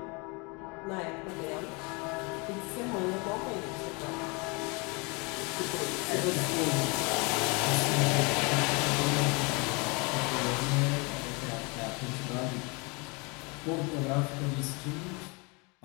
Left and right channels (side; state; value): right; quieter; 29.6 dB